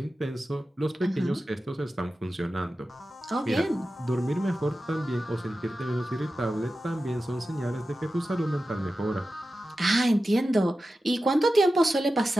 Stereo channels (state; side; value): normal; both; correlation 0.93